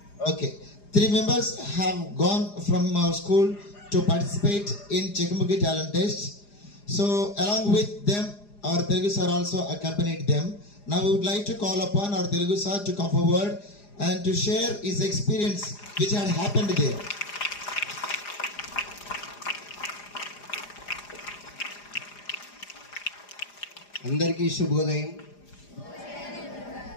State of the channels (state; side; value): late; right; 4.9 ms